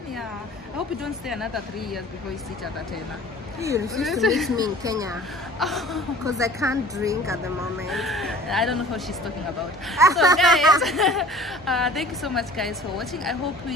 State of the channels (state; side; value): normal; both; correlation 0.46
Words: Yeah, I hope you don't stay another 3 years before you see each other, Tena. You refuse to meet me in Kenya because I can't drink at the moment. I don't know what she's talking about. So guys, thank you so much guys for watching. I hope